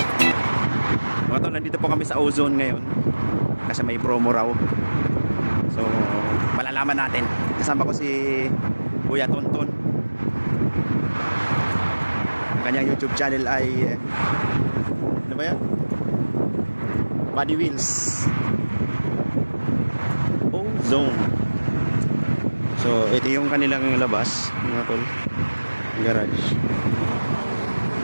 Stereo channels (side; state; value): both; inverted; correlation -1.00